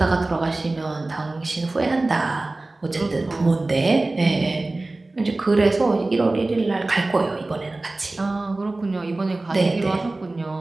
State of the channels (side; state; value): left; quieter; 3.0 dB